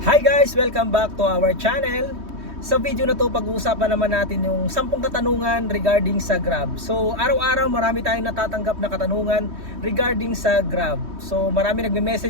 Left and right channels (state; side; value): late; left; 3.2 ms